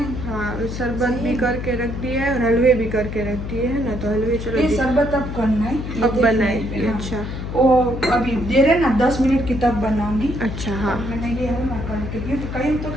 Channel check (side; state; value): left; noise; hum, 6 dB below the sound